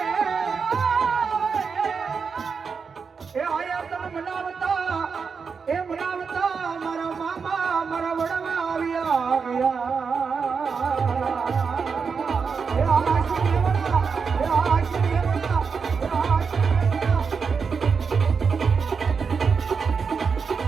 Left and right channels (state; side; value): quieter; left; 5.6 dB